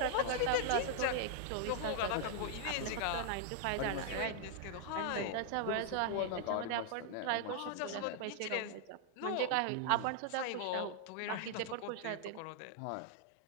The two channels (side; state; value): both; different; correlation 0.00